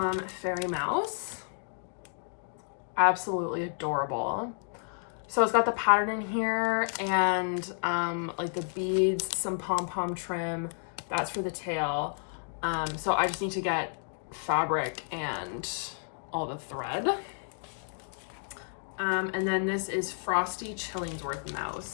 Fairy Mouse. Absolutely adorable. So it's got the pattern in here and like the beads, some pom-pom trim. That's for the tail. So I just need to get fabric and all the thread. And then this is Frosty Chillingsworth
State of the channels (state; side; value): silent; right; digital silence